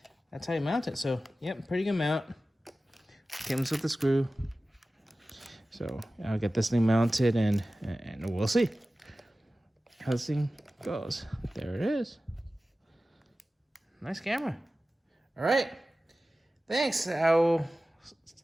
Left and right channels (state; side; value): normal; both; correlation 0.96